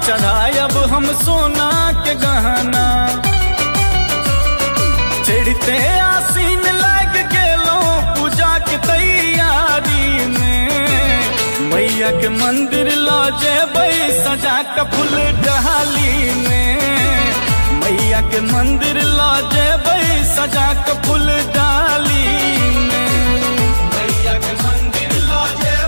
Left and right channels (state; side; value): inverted; both; correlation -1.00